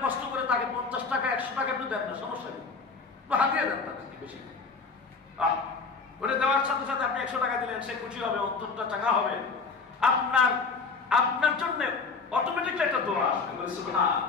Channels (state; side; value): quieter; right; 4.7 dB